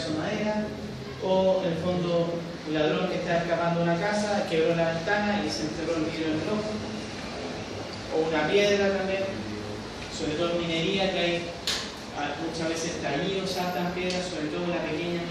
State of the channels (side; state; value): both; identical; correlation 1.00